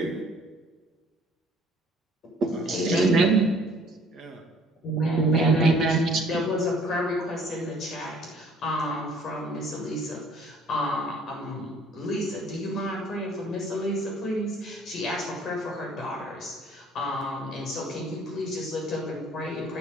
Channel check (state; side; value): normal; both; correlation 0.56